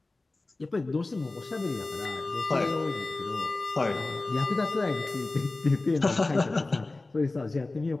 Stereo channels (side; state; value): right; quieter; 3.1 dB